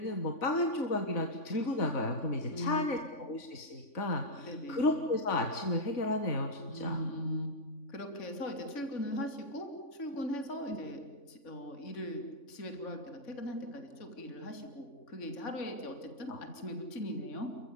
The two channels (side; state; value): right; late; 3.5 ms